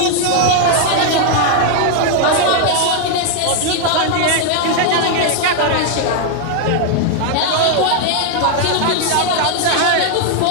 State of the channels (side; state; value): both; different; correlation 0.00